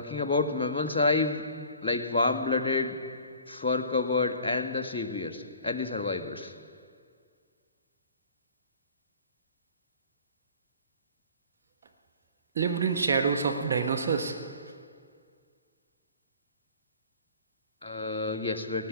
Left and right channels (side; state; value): both; inverted; correlation -0.47